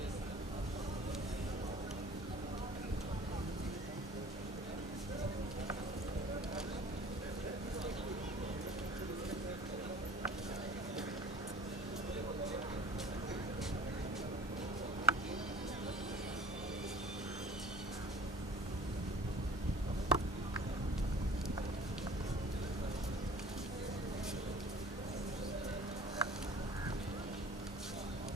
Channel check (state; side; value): normal; both; correlation 0.46